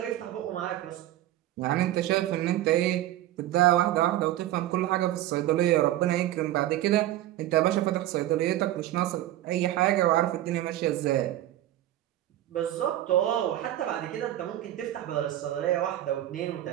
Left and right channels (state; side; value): quieter; left; 13.9 dB